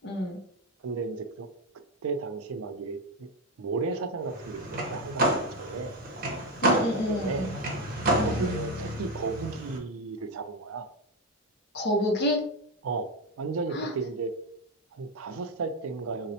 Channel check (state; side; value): normal; both; correlation 0.11